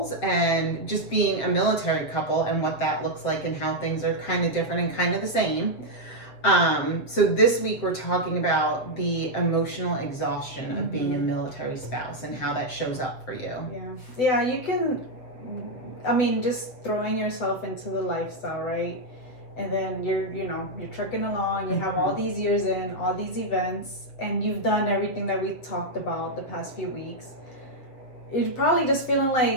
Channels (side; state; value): right; late; 7.6 ms